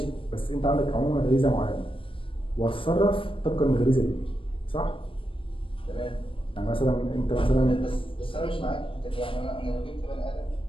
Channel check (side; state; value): right; late; 0.25 ms